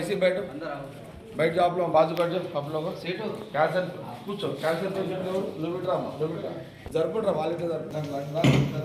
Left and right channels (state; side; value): identical; both; correlation 1.00